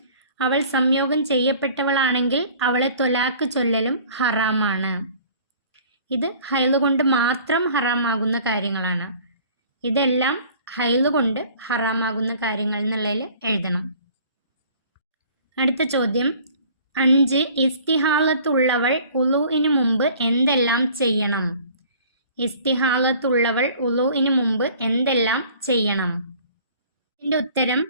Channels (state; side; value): inverted; both; correlation -0.51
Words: അവൾ സംയോഗം ചെയ്യപ്പെട്ടവളാണെങ്കിൽ അവളെ തൊലാക്ക് ചൊല്ലലും ഹറാമാണ്. ഇത് ഹൈള് കൊണ്ട് മാത്രം ഹറാമാകുന്ന കാര്യങ്ങളാണ്. ഇതെല്ലാം ഹൈള് കൊണ്ട് ഹറാമാകുന്ന കാര്യങ്ങൾ എന്നുള്ളതിൽ എഴുതണം. അടുത്ത ചോദ്യം 5. ഇസ്തിഹാലത്തുള്ളവൾ ഉളൂഇന് മുമ്പ് എന്തെല്ലാം ചെയ്യണം? ഇസ്തിഹാലത്തുള്ളവൾ ഉളൂഇന് മുമ്പ് എന്തെല്ലാം ചെയ്യണം? ഇതിൻ്റെ ഉത്തരം